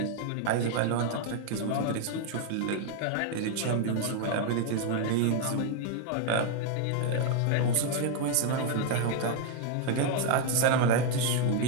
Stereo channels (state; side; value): different; both; correlation 0.01